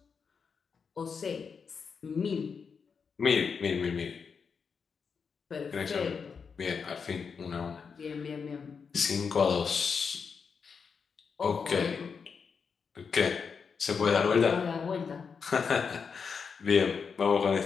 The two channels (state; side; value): quieter; right; 5.9 dB